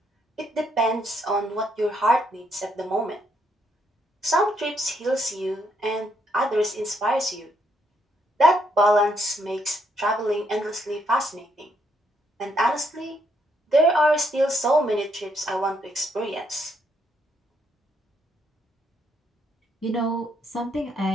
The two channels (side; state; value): both; normal; correlation 0.74